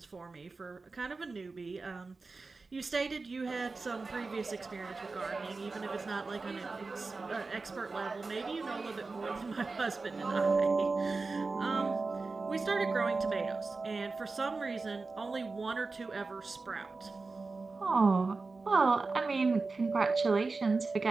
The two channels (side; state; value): left; quieter; 3.9 dB